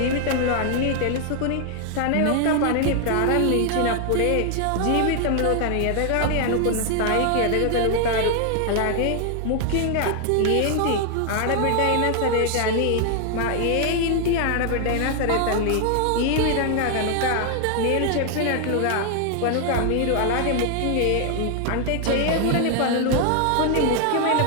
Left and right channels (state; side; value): different; both; correlation 0.00